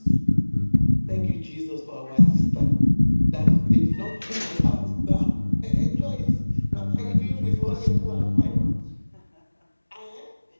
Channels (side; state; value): both; inverted; correlation -1.00